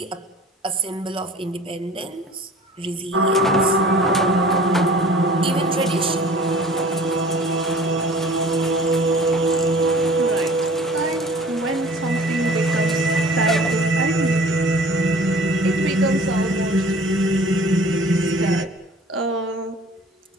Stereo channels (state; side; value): normal; both; correlation 0.47